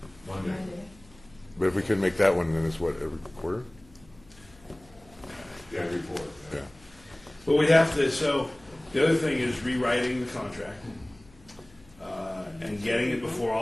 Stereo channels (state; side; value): noise; left; hum, 26 dB below the sound